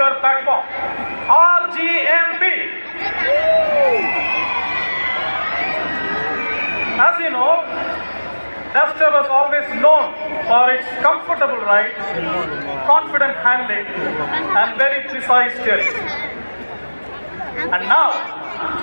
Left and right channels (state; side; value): inverted; both; correlation -1.00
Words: Platform, RGMP. As you know, Duster was always known for its comfortable ride, confident handling and very precise steering. And now,